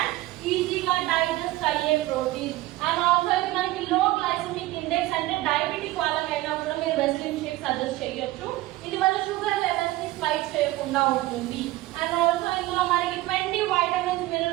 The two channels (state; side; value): quieter; left; 17.7 dB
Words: ఈజీగా డైజెస్ట్ అయ్యే ప్రోటీన్. అండ్ ఆల్సో ఇది మనకి లో గ్లైసెమిక్ ఇండెక్స్ అంటే డయాబెటిక్ వాళ్ళకైనా కూడా మీరు వెస్లిన్ షేక్ సజెస్ట్ చేయొచ్చు. ఇది మన షుగర్ లెవెల్స్ ని స్పైక్ చేయకుండా ఉంటుంది. అండ్ ఆల్సో ఇందులో మనకి 20 వైటమిన్స్